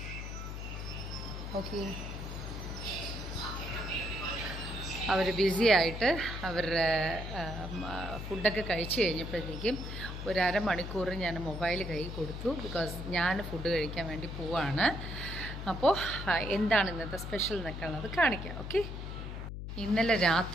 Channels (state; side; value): noise; left; hum, 7 dB below the sound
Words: ഓക്കെ, അവർ ബിസി ആയിട്ട് അവരുടെ ഫുഡൊക്കെ കഴിച്ച് കഴിഞ്ഞപ്പോഴത്തേക്കും ഒരു അരമണിക്കൂർ ഞാൻ മൊബൈൽ കയ്യിൽ കൊടുത്തു. ബിക്കോസ് ഞാൻ ഫുഡ് കഴിക്കാൻ വേണ്ടി പോവാണ്. അപ്പോൾ എന്താണ് ഇന്നത്തെ സ്പെഷ്യൽ എന്നൊക്കെയുള്ളത് കാണിക്കാം. ഓക്കെ, ഇന്നലെ